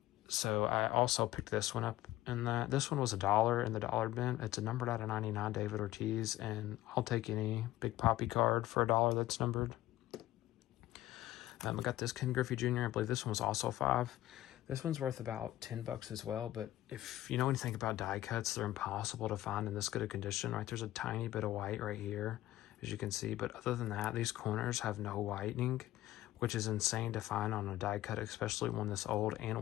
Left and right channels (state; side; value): quieter; right; 15.2 dB